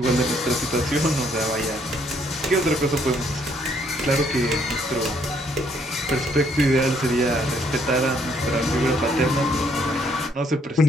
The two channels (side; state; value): both; normal; correlation 0.68